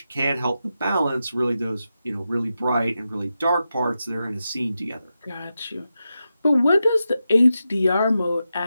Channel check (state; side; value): inverted; both; correlation -0.89